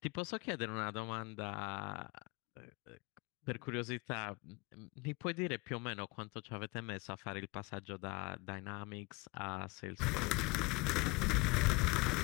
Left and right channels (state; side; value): quieter; right; 26.6 dB